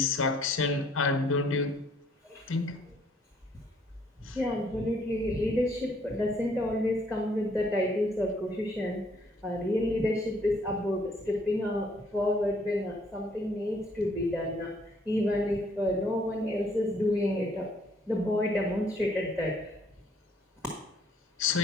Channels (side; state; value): both; normal; correlation 0.64